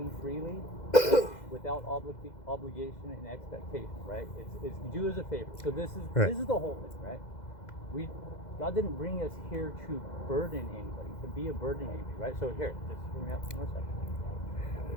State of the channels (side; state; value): right; late; 2.0 ms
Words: freely, right? Without obligation and expectation, right? It's do as a favor. So this is the whole thing, right? God didn't bring us here to burden anybody, to be a burden to anybody, right? So here, just hear me out for a second.